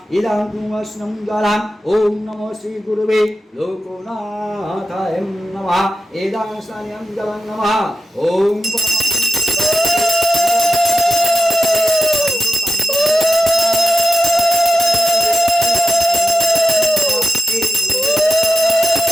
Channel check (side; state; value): both; normal; correlation 0.90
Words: इदं पुरस्नं जलं ओम नमो श्री गुरुवे लोकनाथाय नमः इदं स्नानं जलं नमः ओम